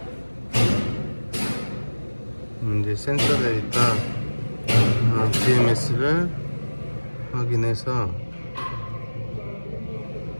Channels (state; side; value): inverted; both; correlation -1.00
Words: 이제 센서 데이터 BMS를 확인해서